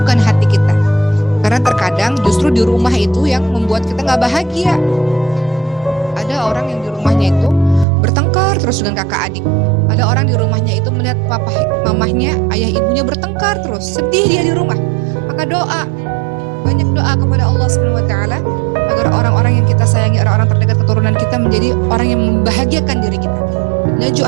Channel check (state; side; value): drops out; left; at 7.9 s